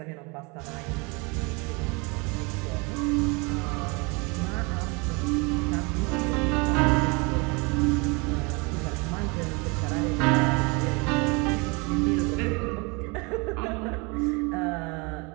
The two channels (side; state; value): left; quieter; 28.9 dB